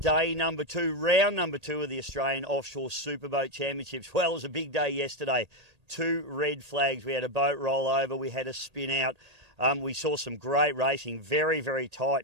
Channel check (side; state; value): left; late; 1.8 ms